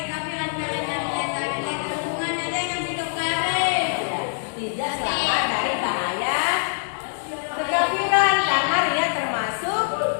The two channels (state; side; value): silent; right; digital silence